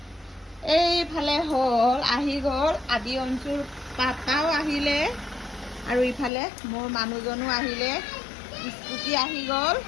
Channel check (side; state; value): right; drops out; at 6.3 s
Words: এইফালে আহি গ'ল আদি অঞ্চুৰ পাপাও আহিলে আৰু ইফালে মোৰ মানুহজনো আহিলে, স্কুটি আহি গ'ল।